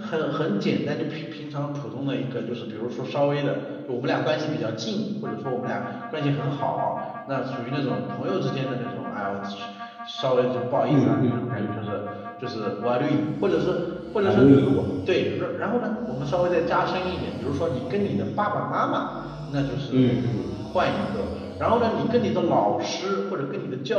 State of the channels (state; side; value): identical; both; correlation 1.00